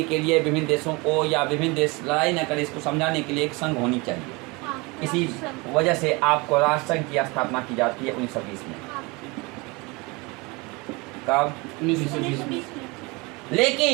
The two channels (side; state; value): left; quieter; 26.3 dB